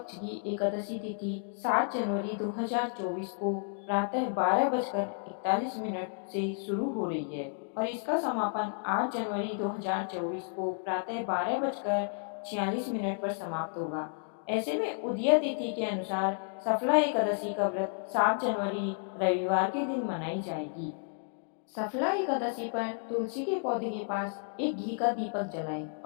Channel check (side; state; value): right; silent; 57 dB below the other